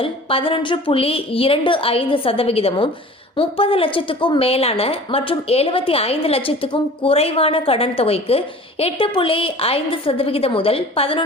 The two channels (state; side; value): normal; both; correlation 0.43